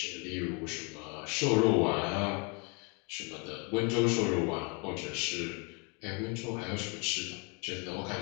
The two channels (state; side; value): quieter; right; 33.3 dB